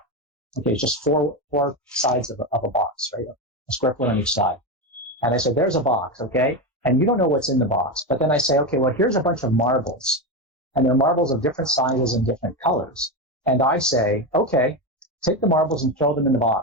Okay, it's just four sides of a box, right? A square foot on each side. And I said, there's a box, okay? And you don't know what's in the box. But then I say, okay, well, here's a bunch of marbles. And they're marbles of different sizes and different colors. And I say, okay, take the marbles and throw them in the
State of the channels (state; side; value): normal; both; correlation 0.15